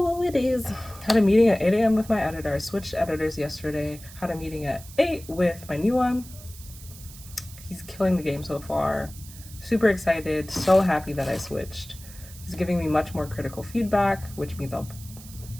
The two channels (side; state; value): right; noise; hiss, 18 dB below the sound